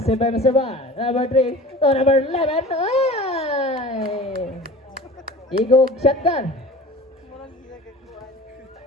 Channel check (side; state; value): both; normal; correlation 0.39